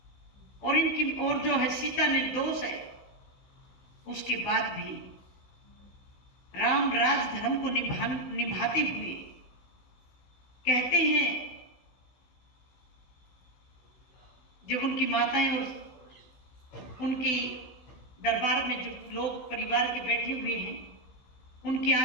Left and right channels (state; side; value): late; right; 16 ms